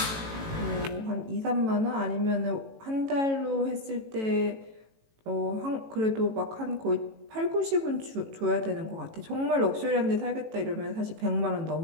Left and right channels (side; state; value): left; late; 18 ms